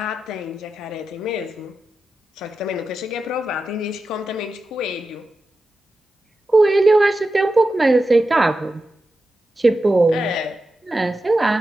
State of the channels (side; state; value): both; normal; correlation 0.91